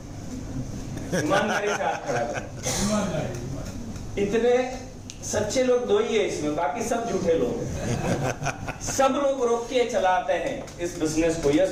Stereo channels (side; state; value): both; identical; correlation 1.00